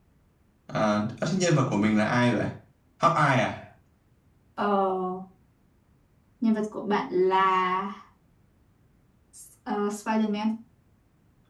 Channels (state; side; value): identical; both; correlation 1.00